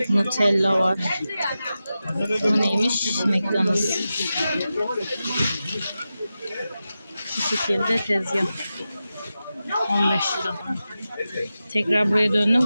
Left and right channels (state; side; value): inverted; both; correlation -0.93